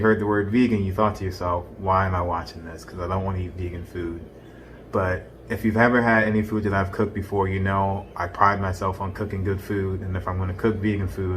heard the word vegan, you thought to yourself, why am I watching this? Because I don't want to eat vegan food. But if you've ever had any food that I've cooked before, you know I pride myself on cooking good food, and if I'm going to cook vegan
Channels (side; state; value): both; identical; correlation 1.00